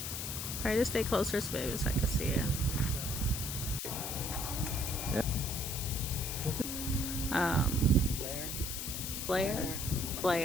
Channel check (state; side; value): noise; left; hiss, 4 dB below the sound